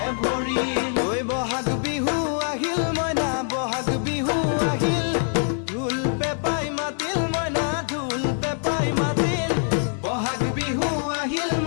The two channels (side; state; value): right; silent; 59 dB below the other